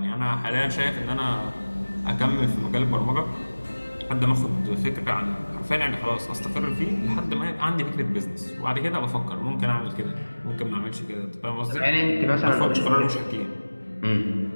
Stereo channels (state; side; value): inverted; both; correlation -1.00